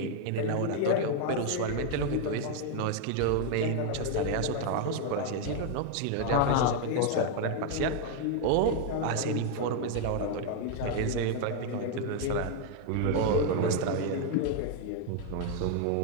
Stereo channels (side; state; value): both; different; correlation 0.00